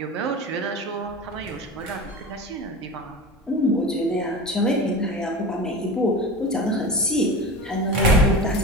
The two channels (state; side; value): normal; both; correlation 0.31